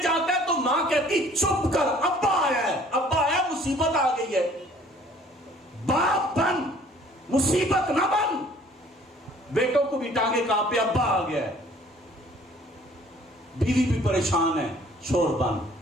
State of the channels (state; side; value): normal; both; correlation 0.55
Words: جاتا ہے تو ماں کہتی چپ کر، ابا آیا مصیبت آ گئی ہے، باپ بن مصیبت نہ بن۔ بیٹوں کو بھی ٹانگے کانپے ابا آ گیا ہے، بیوی بھی پریشان ہے، شور بن،